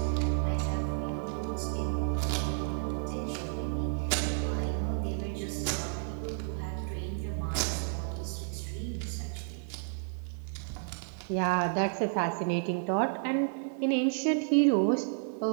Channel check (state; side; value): silent; left; 57 dB below the other